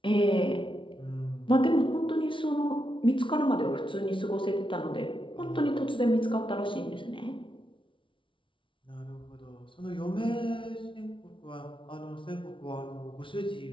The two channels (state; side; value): late; right; 0.25 ms